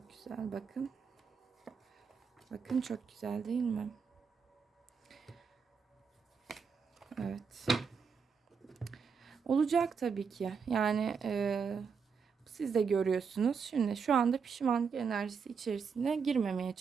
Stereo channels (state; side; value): quieter; left; 5.9 dB